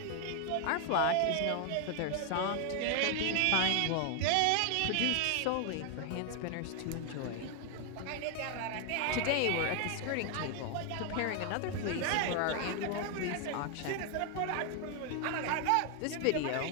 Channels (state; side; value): different; both; correlation 0.00